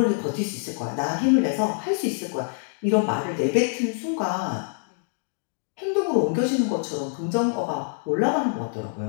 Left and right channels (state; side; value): silent; right; 61 dB below the other